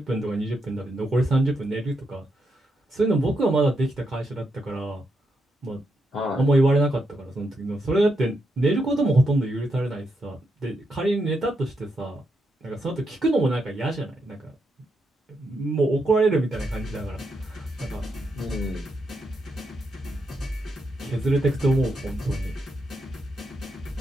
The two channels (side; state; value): both; normal; correlation 0.82